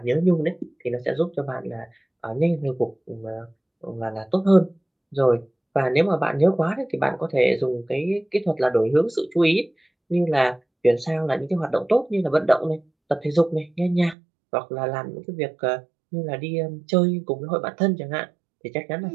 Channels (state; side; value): drops out; left; at 14.2 s